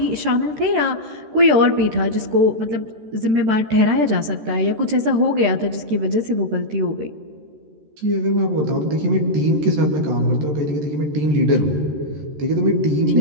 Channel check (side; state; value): left; late; 13 ms